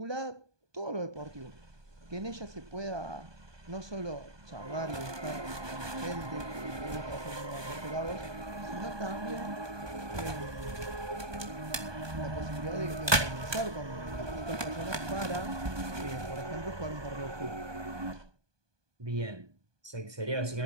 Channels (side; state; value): left; late; 1.2 ms